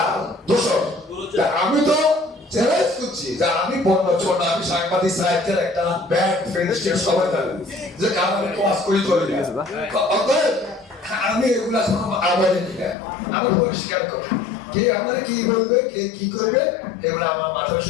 দোষক। আমি তো চ্যালেঞ্জ করছি যে আমি বন্য ছোট, আমি সাংবাদিক সাহিত্যের একটা ব্যাড ফ্রেন্ডশিপ সবাই জানেন যে কারণ আমি ক্লাস করি চলে যায়, আমি এগুলা আমার আমি পরিষ্কার করি, কে আমার কি বলবে, কে কি করবে, এগুলো আমার মাথায়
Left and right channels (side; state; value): right; drops out; at 13.0 s